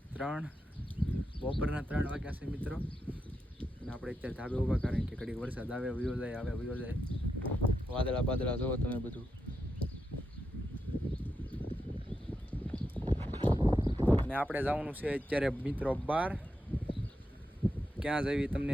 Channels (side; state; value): both; normal; correlation 0.86